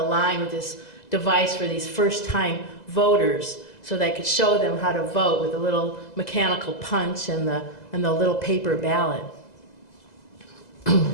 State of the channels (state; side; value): late; right; 2.0 ms